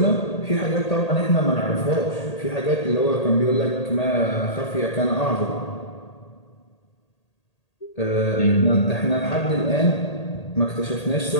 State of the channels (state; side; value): late; right; 1.8 ms